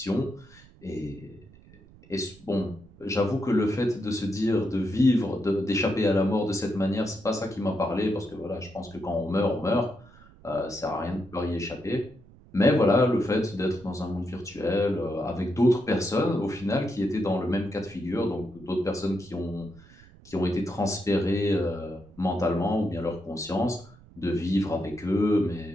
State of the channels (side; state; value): right; noise; rumble, 24 dB below the sound